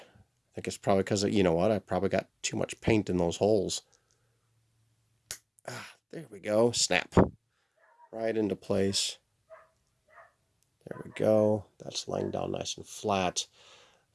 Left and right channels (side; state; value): both; identical; correlation 1.00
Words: think it's probably because, you know what, I probably got too much paint in those holes. Ah, there we go. Snap. Right into place. There we go. That's laying down nice and flat.